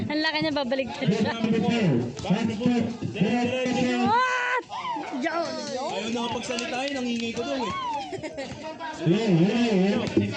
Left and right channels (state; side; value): identical; both; correlation 1.00